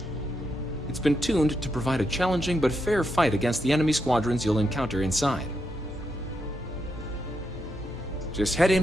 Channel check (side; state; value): both; normal; correlation 0.82